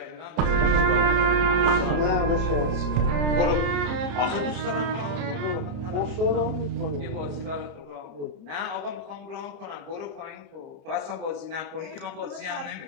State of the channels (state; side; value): late; left; 30 ms